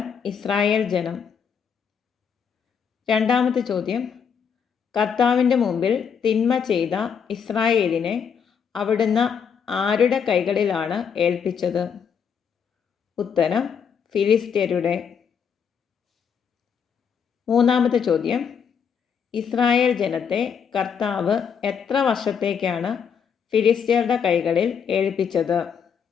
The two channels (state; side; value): quieter; right; 7.0 dB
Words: ഇസ്രായേൽ ജനം. രണ്ടാമത്തെ ചോദ്യം, കർത്താവിൻ്റെ മുമ്പിൽ തിന്മ ചെയ്ത ഇസ്രായേലിനെ അവിടുന്ന് ആരുടെ കൈകളിലാണ് ഏൽപ്പിച്ചത്? ഉത്തരം, ഫിലിസ്ത്യരുടെ. മൂന്നാമത്തെ ചോദ്യം, ഇസ്രായേൽ ജനത്തെ കർത്താവ് എത്ര വർഷത്തേക്കാണ് ഫിലിസ്ത്യരുടെ കൈകളിൽ ഏൽപ്പിച്ചത്?